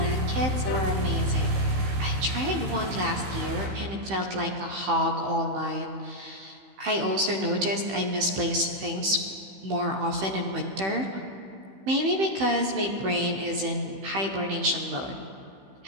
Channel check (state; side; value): late; left; 15 ms